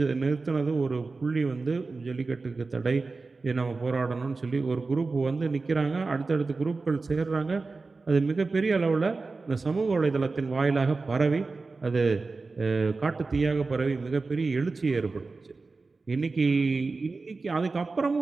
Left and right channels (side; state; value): left; quieter; 3.9 dB